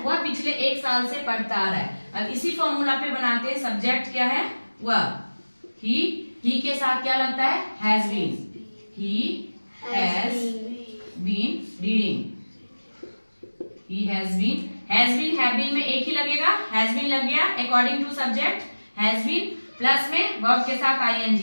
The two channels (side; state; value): both; inverted; correlation -1.00